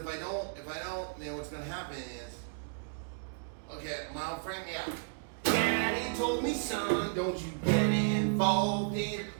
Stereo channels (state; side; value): silent; left; digital silence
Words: I don't, then what's gonna happen is, okay, my old friend, yeah. Daddy told me, son, don't you get involved in